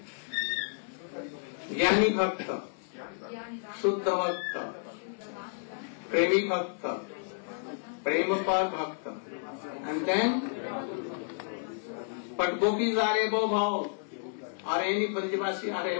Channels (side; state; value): right; silent; digital silence